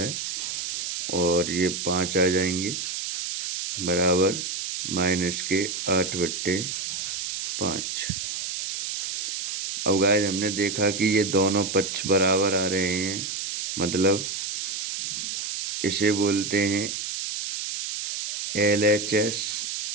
और ये 5 आ जाएंगे बराबर माइनस के 8/5। अब गाइस हमने देखा कि ये दोनों पक्ष बराबर आ रहे हैं, मतलब इसे बोलते हैं LHS,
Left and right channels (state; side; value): noise; right; hiss, 4 dB below the sound